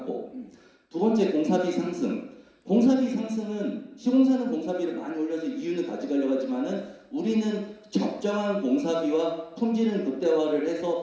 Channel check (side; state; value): both; identical; correlation 1.00